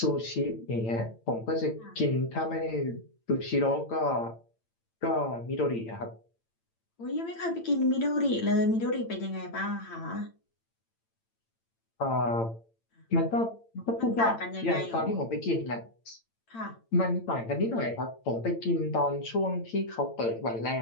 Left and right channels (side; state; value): right; late; 8.9 ms